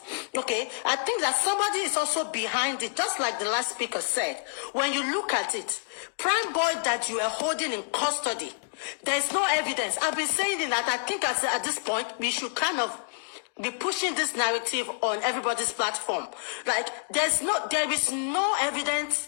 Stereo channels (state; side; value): silent; right; digital silence